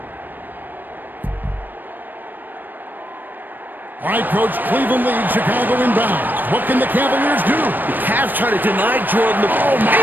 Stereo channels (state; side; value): late; left; 0.091 ms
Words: All right, Coach, Cleveland leads, Chicago inbound. What can the Cavaliers do? The Cavs try to deny Jordan the ball.